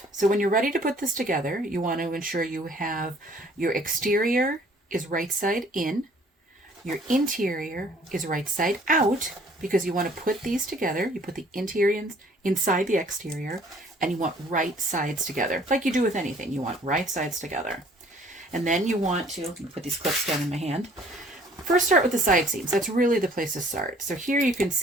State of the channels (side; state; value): both; normal; correlation 0.56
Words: So when you're ready to put this together, you want to ensure you have your exterior is right side in, your interior is right side out, because you want to put these together. You put the interior inside the exterior, and you want right sides together. Like you do with anything, you want right sides together. And then you want to put these clips down in my hand. First, start with the side seams. That's really the place to start. So here you can